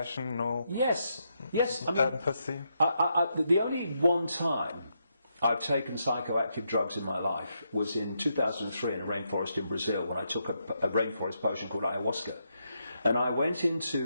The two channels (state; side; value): inverted; both; correlation -0.81